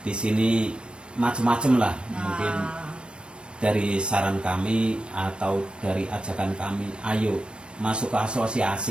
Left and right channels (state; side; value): late; left; 0.056 ms